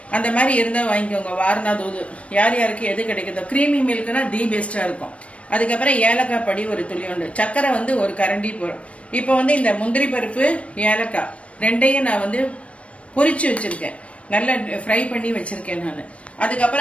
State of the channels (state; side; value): late; right; 0.063 ms